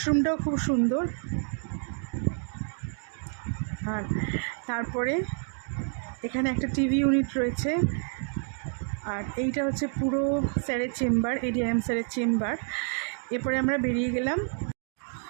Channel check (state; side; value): silent; left; 56 dB below the other